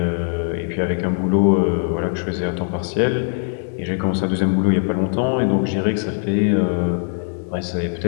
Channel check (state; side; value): silent; right; 65 dB below the other